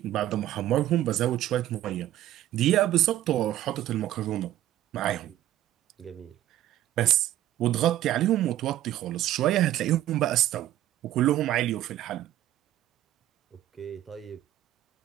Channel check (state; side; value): quieter; left; 13.4 dB